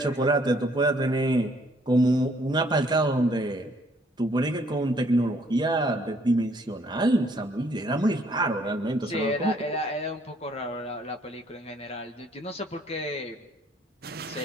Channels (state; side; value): normal; both; correlation 0.64